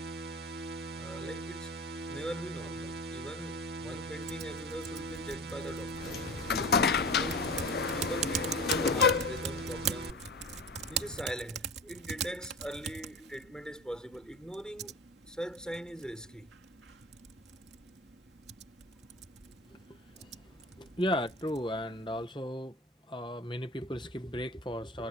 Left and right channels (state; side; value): normal; both; correlation 0.32